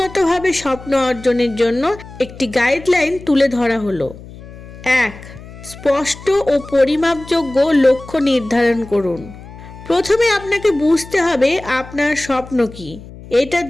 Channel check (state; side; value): noise; left; hum, 17 dB below the sound